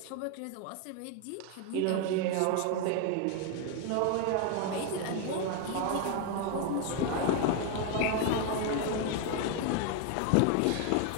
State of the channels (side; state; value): both; different; correlation 0.01